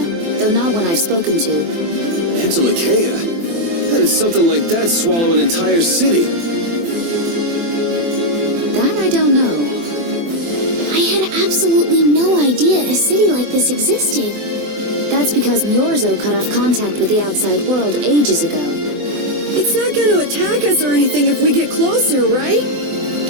though not one I've spoken to. Entelekea? How did something like that swallow an entire city? That I don't know. I had absolutely no idea a city like this existed. That's because Myorzo cut off contact with the outside world ages ago. It's not going to attack us or anything if we get closer, right?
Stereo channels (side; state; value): left; late; 24 ms